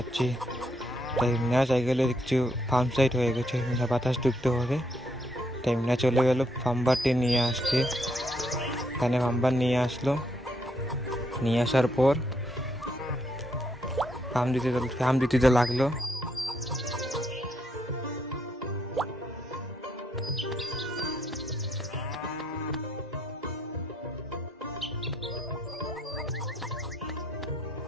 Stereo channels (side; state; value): both; normal; correlation 0.74